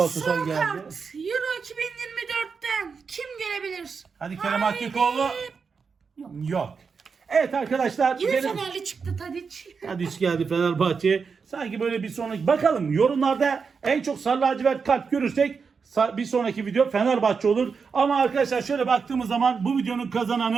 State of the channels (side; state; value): left; quieter; 5.5 dB